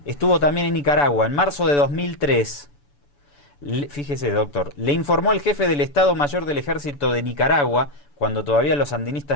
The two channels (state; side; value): late; right; 6.9 ms